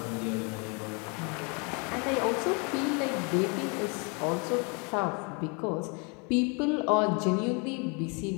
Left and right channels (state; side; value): quieter; right; 33.5 dB